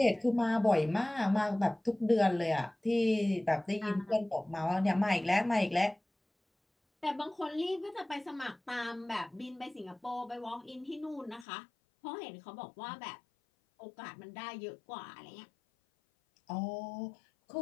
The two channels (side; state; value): right; drops out; at 11.5 s